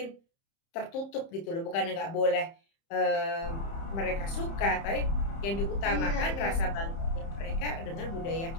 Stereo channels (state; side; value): late; right; 30 ms